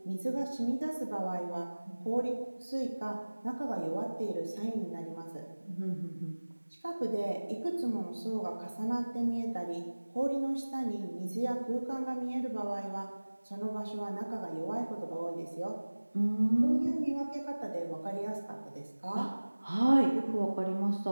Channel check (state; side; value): inverted; both; correlation -1.00